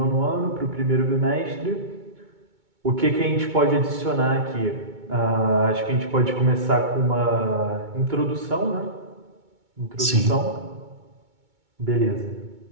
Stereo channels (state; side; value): late; left; 2.2 ms